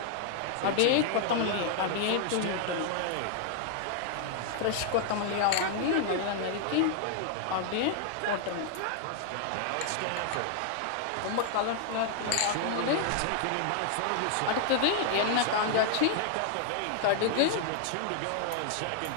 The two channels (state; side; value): different; both; correlation 0.00